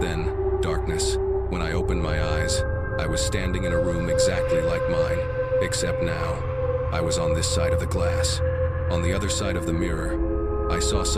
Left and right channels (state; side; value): identical; both; correlation 1.00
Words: darkness. When I opened my eyes, I was standing in a room exactly like mine, except now, I was on this side of the glass. On the other side of the mirror, I saw